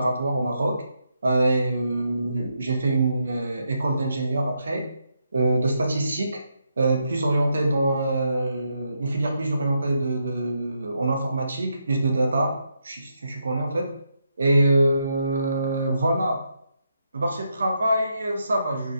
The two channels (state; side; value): inverted; both; correlation -0.81